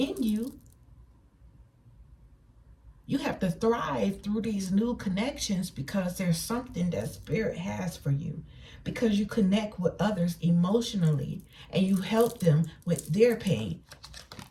you, You have to thrive through these new connections because there's something that Spirit has for you. Because you connect with others emotionally and you help them with their pain.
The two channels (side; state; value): both; identical; correlation 1.00